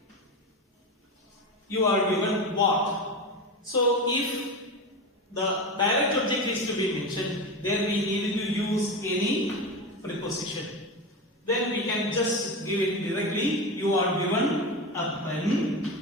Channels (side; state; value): both; normal; correlation 0.22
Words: You are given what? So if the direct object is to be mentioned, then we need to use any preposition. Then we can just give it directly. You are given a